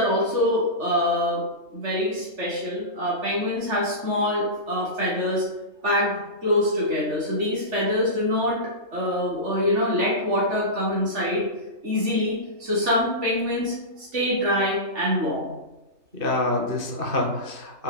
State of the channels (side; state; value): left; late; 3.4 ms